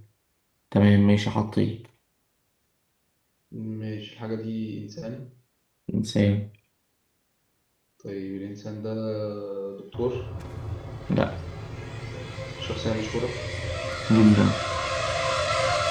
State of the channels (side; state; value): both; identical; correlation 1.00